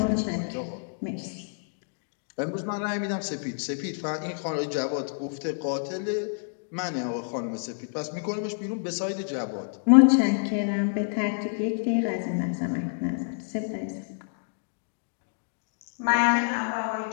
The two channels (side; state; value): right; silent; digital silence